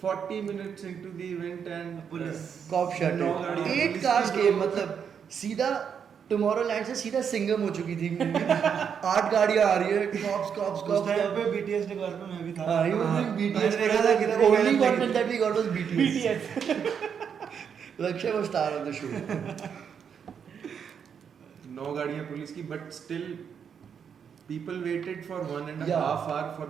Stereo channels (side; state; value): left; quieter; 7.3 dB